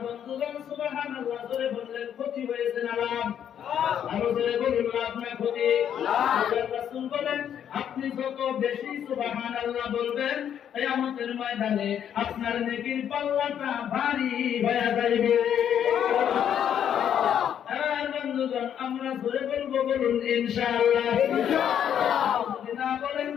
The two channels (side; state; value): right; quieter; 9.3 dB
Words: বন্ধুগণ, সুবহানাল্লাহ জোরে বললেন ক্ষতি হয়েছে না লাভ? আরো জোরে বলুন লাভ না ক্ষতি? আল্লাহর রাসূল বলেন, আপনি যত বেশি সুবহানাল্লাহ বলবেন কিয়ামতের ময়দানে আপনার নেকির পাল্লাটা ভারী হয়ে যাবে। আর বন্ধুগণ, আমরা জোরে বলবো, বলুন ইনশাআল্লাহ। যদি না বলেন